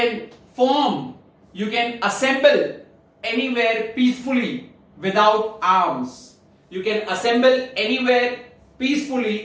form, you can assemble anywhere peacefully without arms. You can assemble anywhere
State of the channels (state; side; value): identical; both; correlation 1.00